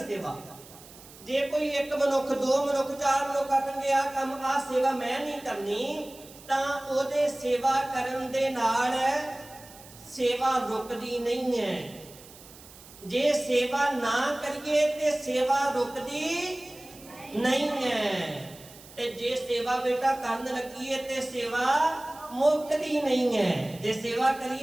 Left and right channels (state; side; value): noise; right; hiss, 20 dB below the sound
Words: ਜੇ ਕੋਈ ਇੱਕ ਮਨੁੱਖ, ਦੋ ਮਨੁੱਖ, ਚਾਰ ਮਨੁੱਖ ਆਖਣਗੇ ਆ ਕੰਮ, ਆ ਸੇਵਾ ਮੈਂ ਨਹੀਂ ਕਰਨੀ, ਤਾਂ ਉਹਦੇ ਸੇਵਾ ਕਰਨ ਦੇ ਨਾਲ ਸੇਵਾ ਰੁਕਦੀ ਨਹੀਂ ਹੈ। ਜੇ ਸੇਵਾ ਨਾ ਕਰੀਏ ਤੇ ਸੇਵਾ ਰੁਕਦੀ ਨਹੀਂ ਹੈ। ਤੇ ਜੇ ਸੇਵਾ ਬੇਟਾ ਕਰਨ ਲੱਗੀਏ ਤੇ ਸੇਵਾ ਮੁੱਕਦੀ ਨਹੀਂ ਹੈ। ਜੇ ਸੇਵਾ